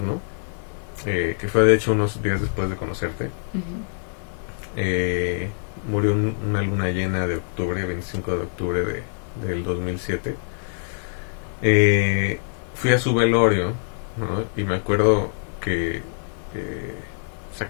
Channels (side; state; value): right; silent; digital silence